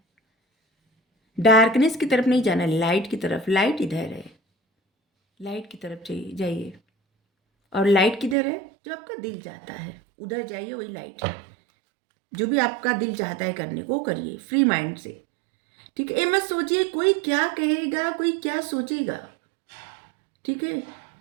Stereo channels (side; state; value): left; drops out; at 8.3 s